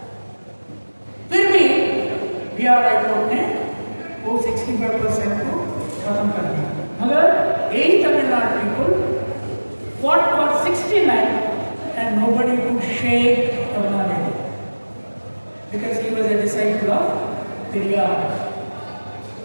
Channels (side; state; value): both; inverted; correlation -1.00